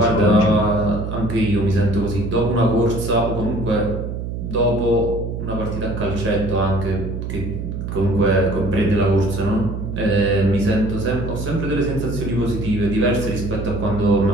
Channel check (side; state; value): right; noise; hum, 5 dB below the sound